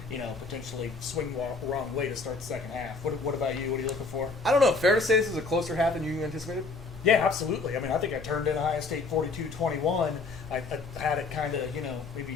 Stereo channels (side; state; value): right; quieter; 3.9 dB